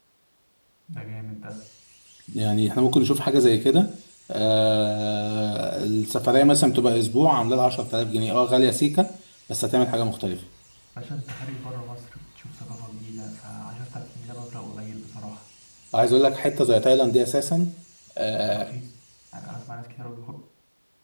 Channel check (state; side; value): inverted; both; correlation -1.00